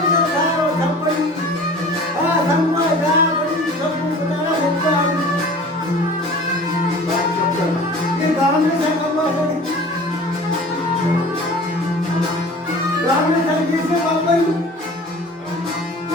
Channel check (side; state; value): both; normal; correlation 0.43